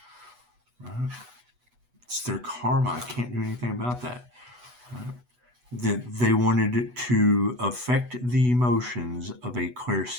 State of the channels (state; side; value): late; left; 8.1 ms